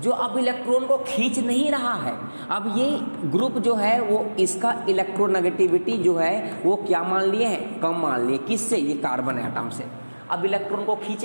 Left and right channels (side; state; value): both; inverted; correlation -1.00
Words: अब इलेक्ट्रॉन को खींच नहीं रहा है। अब ये ग्रुप जो है वो इसका इलेक्ट्रोनेगेटिविटी जो है वो क्या मान लिए हैं, कम मान लिए, किससे, ये कार्बन एटम से। अब इलेक्ट्रॉन को